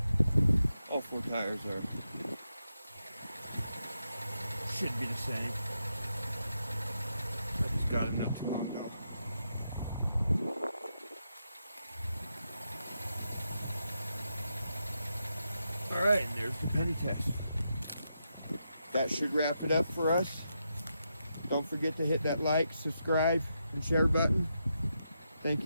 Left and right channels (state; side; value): inverted; both; correlation -0.85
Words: All 4 tires should be the same. I just got them not too long ago. All right, and there's the penny test. That should wrap it up for us. Don't forget to hit that like, subscribe, and share button. Thank